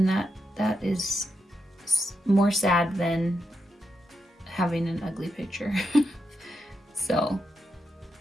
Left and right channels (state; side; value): normal; both; correlation 0.84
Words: that is more sad than having an ugly picture. So